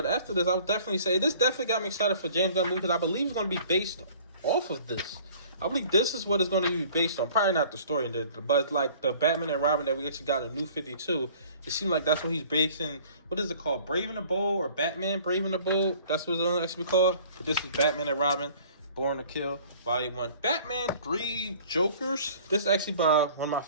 after this, I would definitely say this definitely got me excited for James Gunn movie, because I believe it's going to be based off of this. I believe this is what it's going to be based on. Probably not the story, but like the Batman and Robin that we actually got in New 52. It seems like that's what he's basing. What is it called? Brave and the Bold, or Batman Brave and the Bold? That's what it's going to actually be called. But this is Batman and Robin, Born to Kill, Volume 1. Batman 3 Jokers. This is actually by one of my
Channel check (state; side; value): inverted; both; correlation -0.51